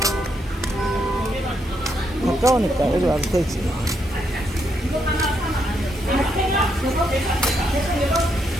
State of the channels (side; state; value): both; normal; correlation 0.77